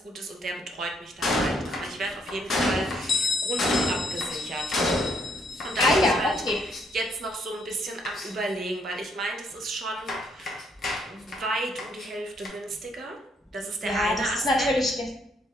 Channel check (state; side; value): normal; both; correlation 0.71